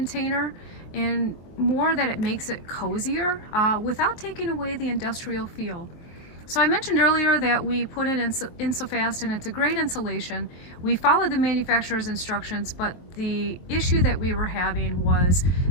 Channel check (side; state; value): right; late; 23 ms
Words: and more that it makes it cozier without taking away the industrial feel. So I mentioned earlier that we put it in Insofast, and it's a great insulation. We followed the manufacturer's instructions, but the issue that we were having was